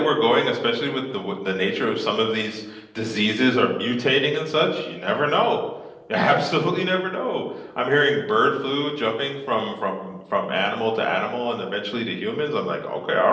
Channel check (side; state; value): both; identical; correlation 1.00